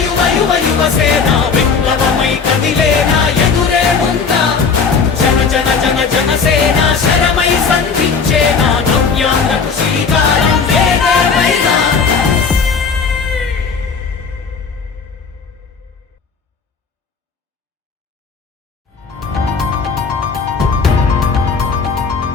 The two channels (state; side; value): quieter; right; 5.4 dB